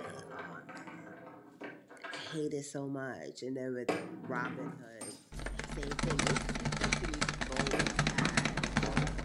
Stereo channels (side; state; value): both; identical; correlation 1.00